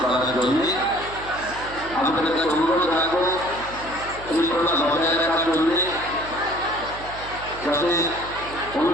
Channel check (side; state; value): right; noise; hum, 15 dB below the sound